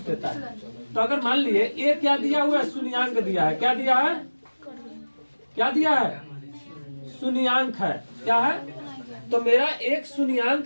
देता है, तो अगर मान लिए ये क्या दिया हुआ है शून्यांक दिया है, क्या दिया है, क्या दिया है शून्यांक है, क्या है। तो मेरा एक शून्यांक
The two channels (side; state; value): both; inverted; correlation -1.00